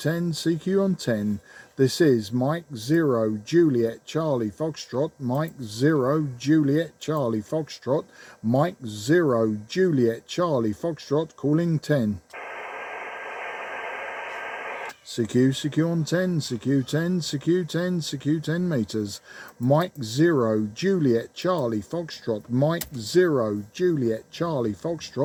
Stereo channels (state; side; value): identical; both; correlation 1.00